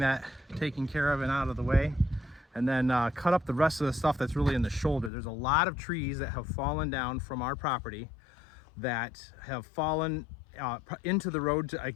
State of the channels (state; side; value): drops out; right; at 5.1 s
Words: taken care of and out of the way, and then cut up the rest of the stuff that's really in the shoulder. There's a lot of trees that have fallen down from our property that have fallen into the road